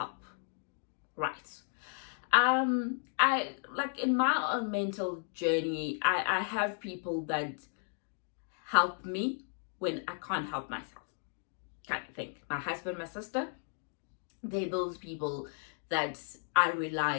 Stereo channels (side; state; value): right; silent; 55 dB below the other